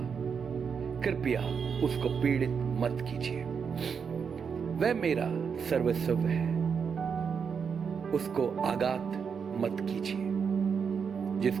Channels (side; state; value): left; quieter; 6.4 dB